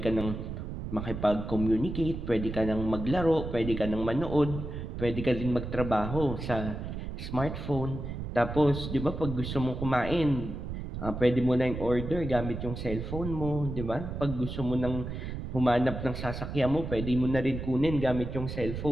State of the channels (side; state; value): right; noise; rumble, 6 dB below the sound